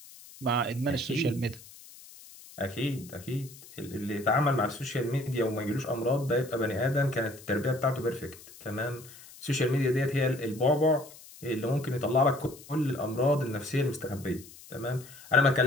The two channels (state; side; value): noise; left; hiss, 19 dB below the sound